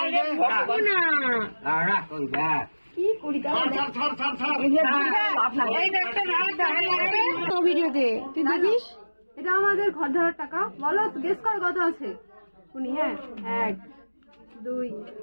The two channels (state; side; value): inverted; both; correlation -1.00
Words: ভগবানা, কি করি ভিডিওতে তুই দেখিস। এটা আমাদের ঘর ধরার টাকা। বলো গেস কর কত আছে। উনি হ্যাঁ 1 2